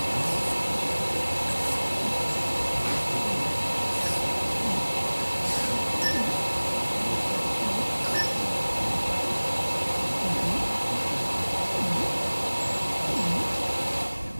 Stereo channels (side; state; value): both; inverted; correlation -1.00